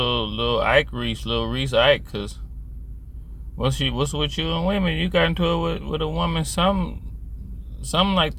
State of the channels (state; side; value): identical; both; correlation 1.00